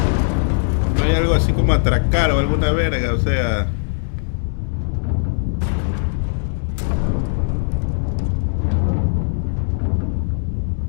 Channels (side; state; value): right; silent; digital silence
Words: No hay algo así como atracar o alguna verga, o sea.